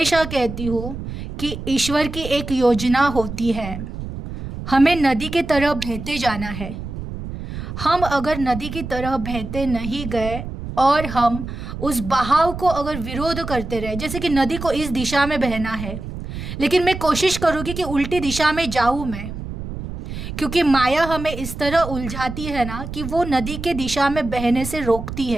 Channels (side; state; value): right; noise; rumble, 8 dB below the sound